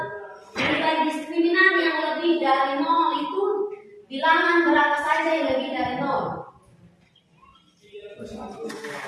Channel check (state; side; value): identical; both; correlation 1.00